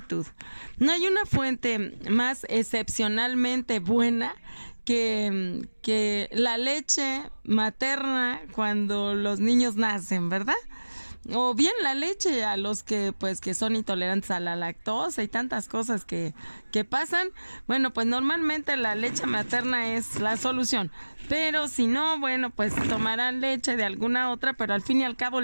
No hay una fuente más excepcionalmente buena que la leche materna cuando los niños nacen, ¿verdad? O bien la leche a los que son intolerantes a la lactosa y tantas cosas que pasan. Bueno, pues normalmente la leche materna es la solución, pero si no, bueno, pues tomarán leche de alguna otra, pero al fin y al cabo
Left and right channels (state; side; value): inverted; both; correlation -1.00